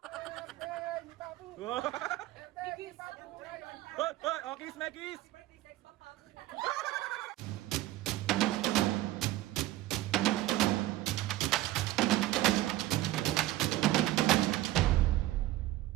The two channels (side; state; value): left; quieter; 16.0 dB